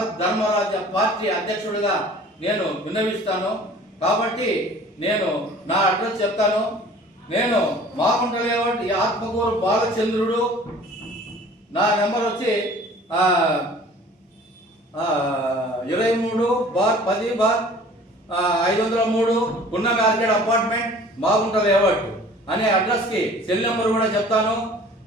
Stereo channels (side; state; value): both; normal; correlation 0.48